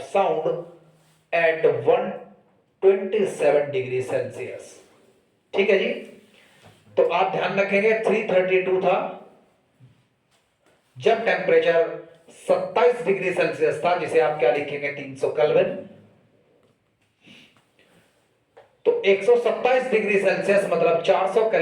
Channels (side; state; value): both; identical; correlation 1.00